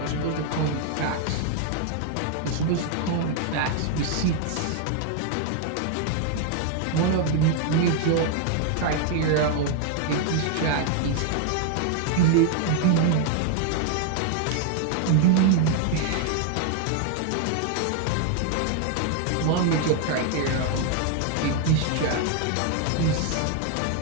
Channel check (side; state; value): both; different; correlation 0.00